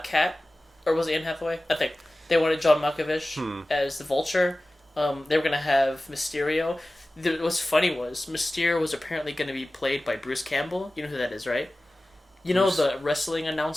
Cat, or was it Anne Hathaway? I think they wanted John Malkovich as the Vulture. They were going to have Mysterio. What's funny was Mysterio was apparently going to be played by Bruce Campbell. You know who that is, right? You know the wrestling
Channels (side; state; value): both; normal; correlation 0.97